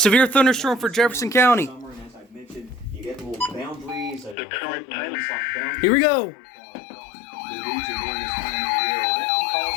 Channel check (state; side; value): drops out; right; at 4.4 s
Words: thunderstorm for Jefferson County. summer, and as I mentioned, you get little boundaries. The current time. Here we go. The region during this time of the year. That can cause